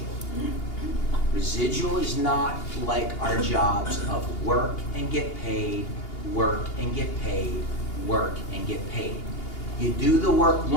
Residual is not like our jobs of work and get paid, work and get paid, work and get paid. You do the work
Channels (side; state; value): right; late; 2.8 ms